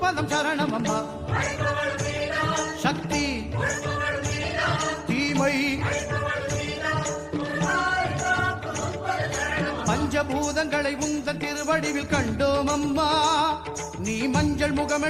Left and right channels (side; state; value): both; identical; correlation 1.00